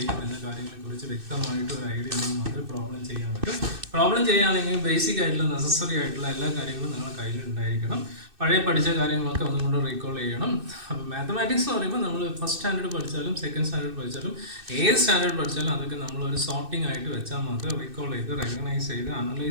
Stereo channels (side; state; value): left; late; 2.6 ms